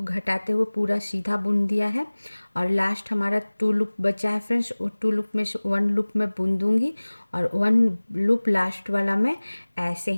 घटाते हुए पूरा सीधा बुन दिया है, और लास्ट हमारा 2 लूप बचा है फ्रेंड्स। वो 2 लूप में से 1 लूप मैं बुन दूंगी, और 1 लूप लास्ट वाला मैं ऐसे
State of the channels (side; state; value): both; inverted; correlation -1.00